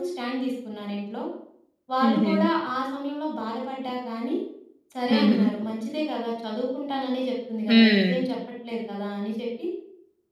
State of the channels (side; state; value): both; identical; correlation 1.00